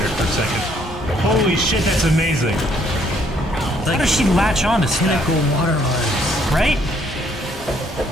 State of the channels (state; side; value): normal; both; correlation 0.66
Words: for a second. Holy shit, that's amazing. How does she latch on to stuff? Cool water arms. Right?